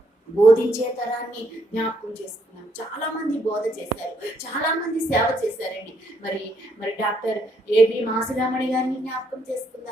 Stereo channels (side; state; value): both; normal; correlation 0.73